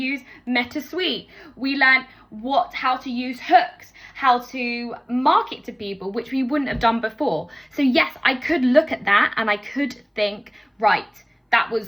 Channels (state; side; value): identical; both; correlation 1.00